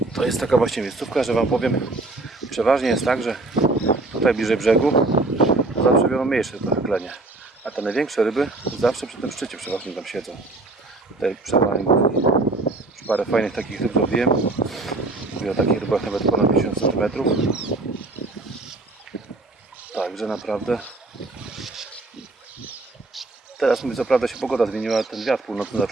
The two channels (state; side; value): quieter; left; 3.1 dB